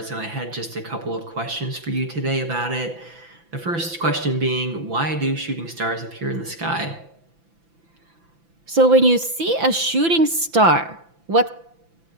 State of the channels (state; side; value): late; left; 5.9 ms